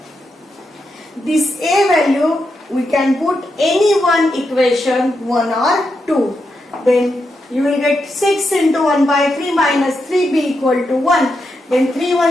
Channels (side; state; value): both; normal; correlation 0.85